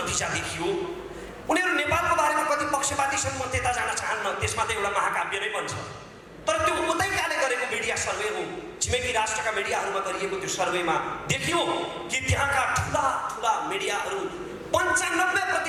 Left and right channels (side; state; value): both; identical; correlation 1.00